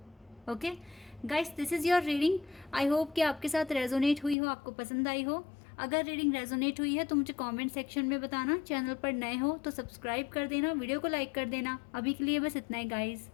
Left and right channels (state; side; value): drops out; right; at 4.4 s